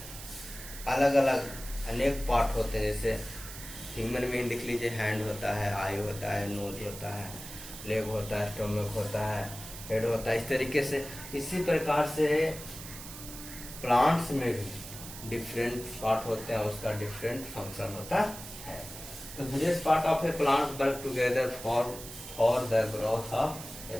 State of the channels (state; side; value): noise; right; hiss, 12 dB below the sound